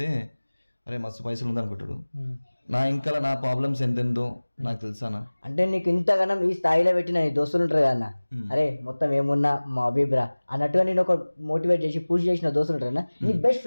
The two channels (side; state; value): both; inverted; correlation -1.00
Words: అరే మస్తు పైసలు ఉంది అనుకుంటాడు. నా ఇంకా నా ప్రాబ్లమ్స్ ఎంతెందో నాకు తెలుసానా. అంటే నీకు ఇంతగానం ఈ స్థాయిలో పెట్టిన దోస్తులు ఉంటారు కదా, అరే మొత్తం ఏమున్నా మా అభిప్రా అన్నట్టుగా నేను ఒక మోటివేట్ చేసి పూజ చేసిన దోస్తులు ఉంటారు. నీ బెస్ట్